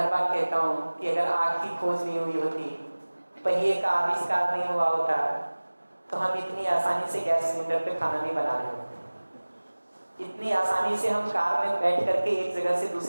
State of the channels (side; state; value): both; inverted; correlation -1.00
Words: बार कहता हूँ कि अगर आग की खोज नहीं हुई होती, पहिए का आविष्कार नहीं हुआ होता, तो हम इतनी आसानी से गैस सिलेंडर पे खाना नहीं बना रहे होते। इतनी आसानी से हम कार में बैठ करके एक जगह से